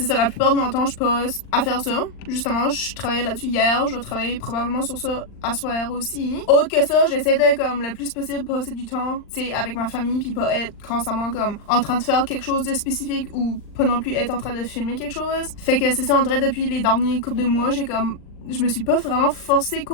ça, la plupart de mon temps, je passe à faire ça. Justement, je travaillais là-dessus hier, je vais travailler probablement sur ça à soir aussi. Autre que ça, j'essaie de, comme, le plus possible passer du temps, tu sais, avec ma famille, puis pas être constamment, comme, en train de faire quelque chose de spécifique ou pas non plus être en train de filmer quelque chose. Fait que c'est ça, en vrai, depuis les derniers couples de mois, j'ai comme je me suis pas vraiment forcée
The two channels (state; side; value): late; right; 39 ms